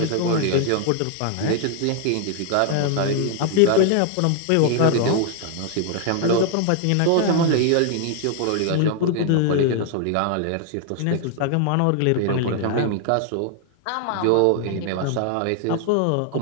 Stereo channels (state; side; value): different; both; correlation 0.00